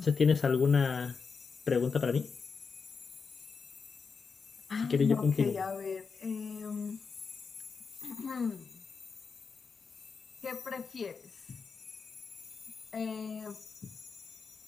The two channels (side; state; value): right; quieter; 5.2 dB